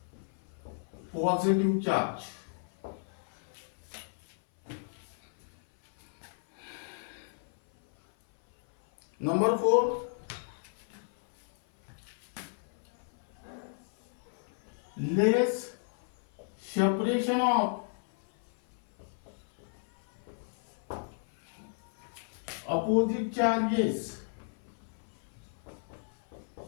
positive charge. Number four, less separation of opposite charges.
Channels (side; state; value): right; silent; 56 dB below the other